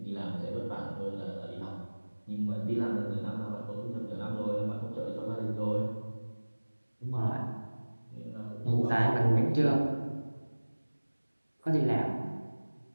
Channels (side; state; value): both; inverted; correlation -1.00